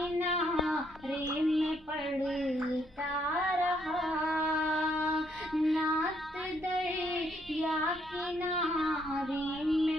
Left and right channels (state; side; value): normal; both; correlation 0.72